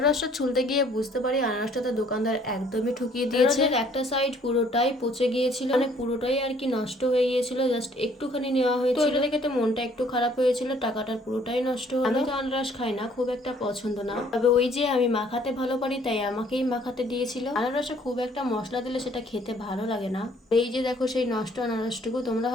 ছুলতে গিয়ে বুঝতে পারি আনারসটা তো দোকানদার একদমই ঠকিয়ে দিয়েছে। একটা সাইড পুরোটাই পচে গিয়েছিল, মানে পুরোটাই আর কি নষ্ট হয়ে গিয়েছিল। জাস্ট একটুখানি নেওয়া হয়েছিল, তো এটা দেখে তো মনটা একটু খারাপ হয়েছিল, টাকাটার পুরোটাই নষ্ট হলো। আমি তো আনারস খাই না, খুব একটা পছন্দ না, তবে ওই যে আমি মাখাতে ভালো পারি তাই আমাকেই মাখাতে দিয়েছিল। আনারসে খুব একটা মশলা দিলে সেটা খেতে ভালো লাগে না। এই যে দেখো সেই নষ্ট আনারসটুকু, তোমরা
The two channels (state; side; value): normal; both; correlation 0.60